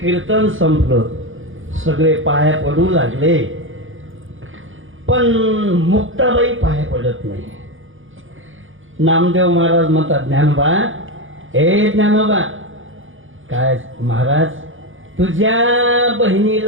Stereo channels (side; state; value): left; late; 0.58 ms